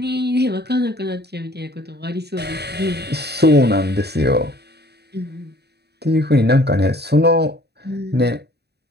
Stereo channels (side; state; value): left; late; 0.48 ms